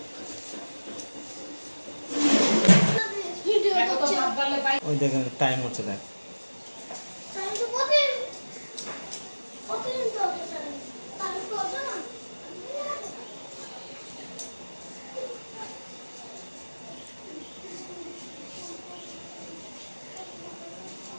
ওই দেখেন টাইম হচ্ছে, দেখ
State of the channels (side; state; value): both; inverted; correlation -1.00